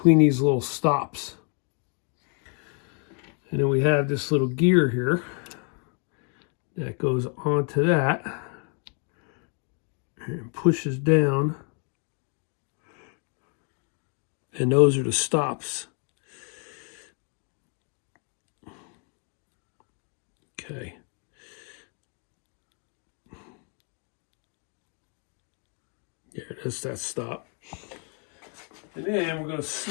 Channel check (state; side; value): quieter; right; 39.7 dB